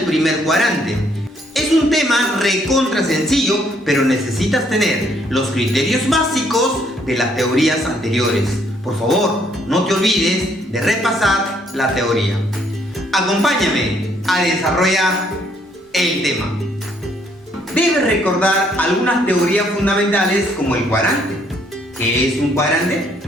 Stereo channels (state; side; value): normal; both; correlation 0.68